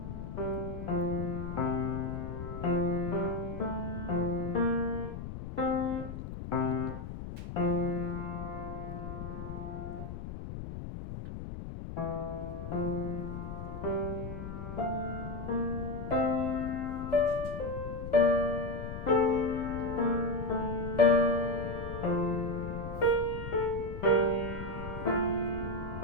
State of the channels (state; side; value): noise; left; rumble, 8 dB below the sound